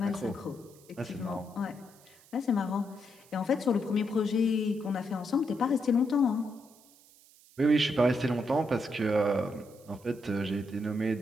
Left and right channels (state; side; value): noise; right; hiss, 26 dB below the sound